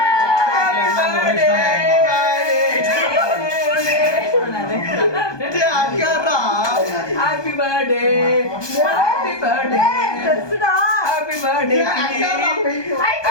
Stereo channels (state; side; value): late; right; 1.2 ms